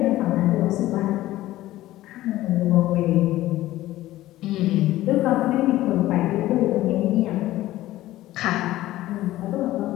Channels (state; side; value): quieter; right; 15.6 dB